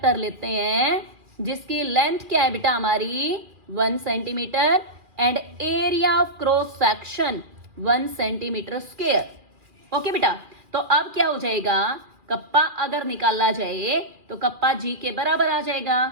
लेते हैं जिसकी लेंथ क्या है बेटा हमारी 1 centimetre and area of cross section 1 centimetre square. Okay बेटा, तो अब क्या हो जाएगा, कप्पा अगर निकाला जाए तो कप्पा जी के बराबर आ जाएगा।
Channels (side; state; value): left; late; 2.4 ms